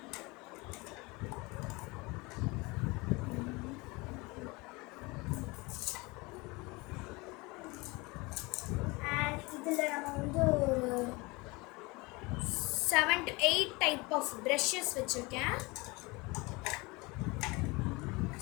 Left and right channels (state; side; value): quieter; right; 24.9 dB